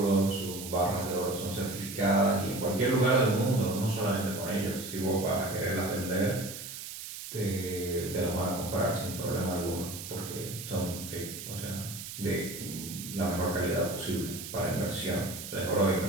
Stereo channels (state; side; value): noise; right; hiss, 9 dB below the sound